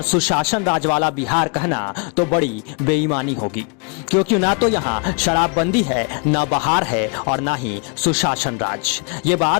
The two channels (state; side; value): quieter; right; 35.9 dB